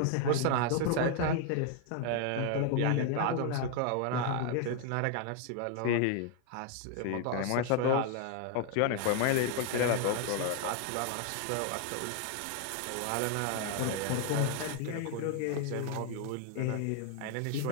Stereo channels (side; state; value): both; different; correlation 0.00